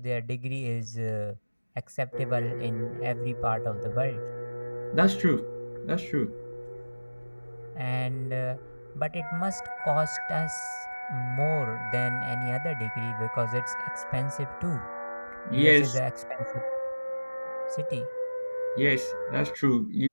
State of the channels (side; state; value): both; inverted; correlation -1.00